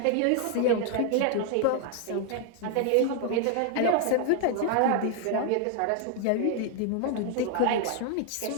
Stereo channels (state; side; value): different; both; correlation 0.00